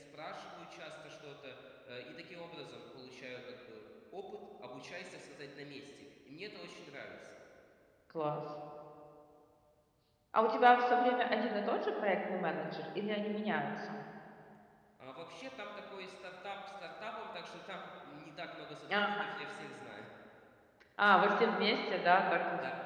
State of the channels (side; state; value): both; identical; correlation 1.00